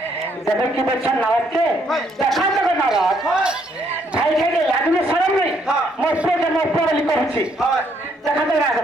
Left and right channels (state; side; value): normal; both; correlation 0.70